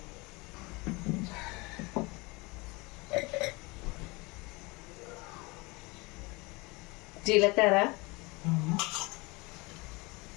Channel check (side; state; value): right; quieter; 25.3 dB